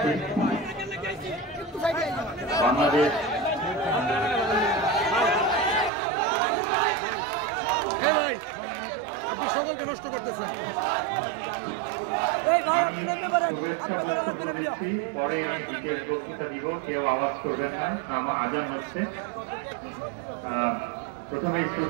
বাংলাদেশ সকলকে নষ্ট করতেছেন। পরে আমি বিশেষ বক্তৃতা দিব, কেউ আওয়াজ করবেন না, আমার আজান হচ্ছে। প্রথমে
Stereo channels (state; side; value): drops out; left; at 5.9 s